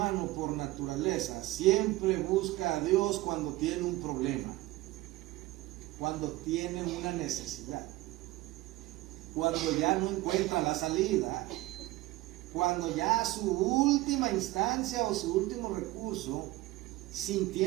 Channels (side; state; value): left; quieter; 18.4 dB